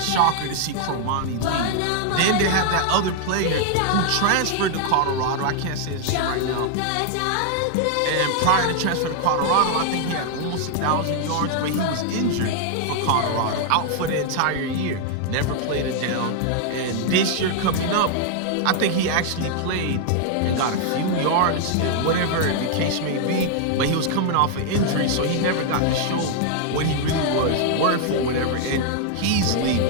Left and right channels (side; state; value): both; different; correlation 0.00